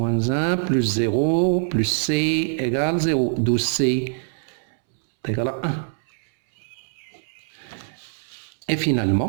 1, plus 0, plus c égale 0, d'où c est égal à 1. Et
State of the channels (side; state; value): left; silent; 63 dB below the other